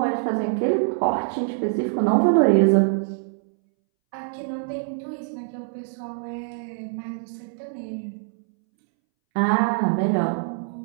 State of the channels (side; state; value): left; silent; 63 dB below the other